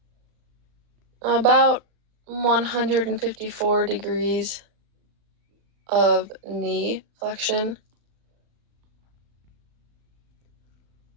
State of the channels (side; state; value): left; late; 36 ms